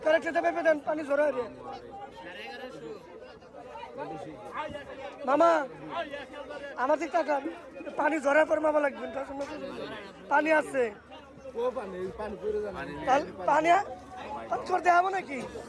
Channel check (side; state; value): both; identical; correlation 1.00